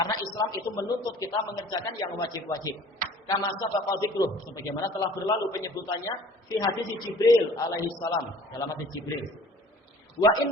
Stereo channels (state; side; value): normal; both; correlation 0.49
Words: Islam itu menuntut kita mengerjakan yang wajib-wajib. Kama sabaqa dzikruh, sebagaimana telah berlalu penyebutannya fi hadis Jibril alaihi salam, dalam hadis Jibril. Wa